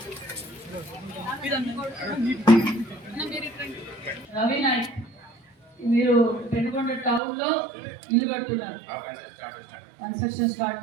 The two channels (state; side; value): drops out; left; at 7.2 s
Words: రవి నాయక్, మీరు పెనుకొండ టౌన్ లో ఇల్లు కడుతున్నారు, కన్స్ట్రక్షన్ స్టార్ట్